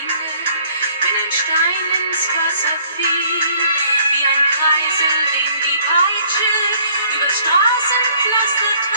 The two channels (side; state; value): both; inverted; correlation -0.59